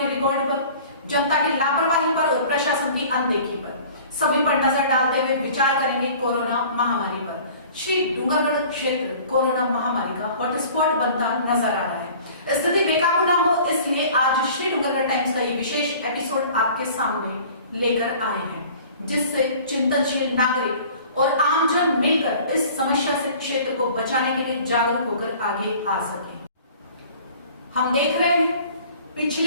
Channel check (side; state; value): both; inverted; correlation -0.47